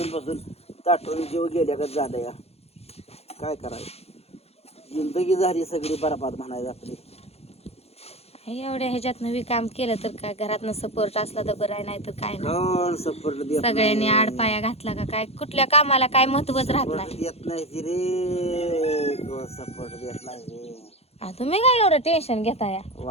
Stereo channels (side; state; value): right; late; 0.30 ms